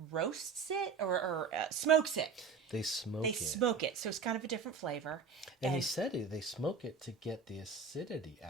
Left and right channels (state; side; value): quieter; left; 5.3 dB